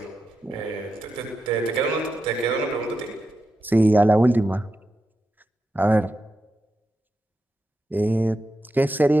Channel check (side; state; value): both; normal; correlation 0.88